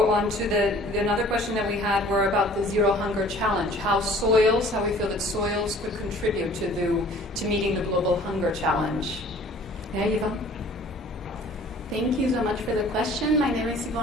on to another question that we had were about the Zero Hunger Challenge. How we feel that soils could contribute to meeting the global hunger challenge. Yeah, Eva? Thank you so much for the question. My name is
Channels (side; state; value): both; normal; correlation 0.51